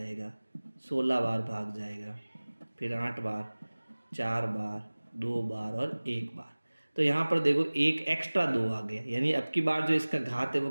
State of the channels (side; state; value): both; inverted; correlation -1.00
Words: 16 बार भाग जाएगा, फिर 8 बार, 4 बार, 2 बार और 1 बार। तो यहाँ पर देखो एक एक्स्ट्रा 2 आ गया, यानी अब की बार जो इसका घात है वो